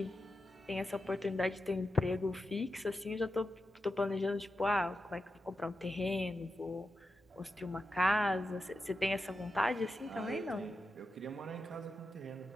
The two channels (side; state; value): both; normal; correlation 0.89